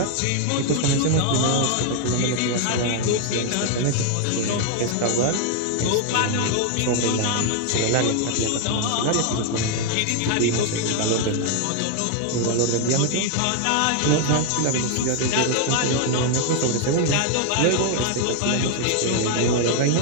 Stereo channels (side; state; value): both; different; correlation 0.00